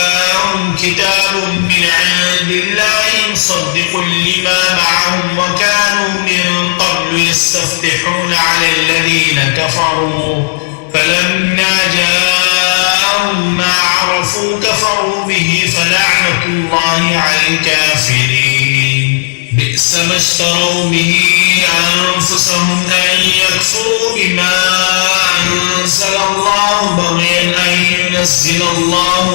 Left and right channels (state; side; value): silent; right; digital silence